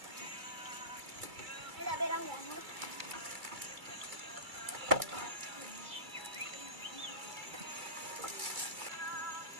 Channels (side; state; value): left; late; 2.3 ms